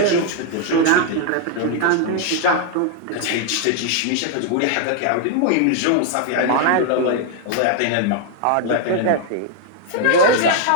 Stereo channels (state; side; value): different; both; correlation 0.00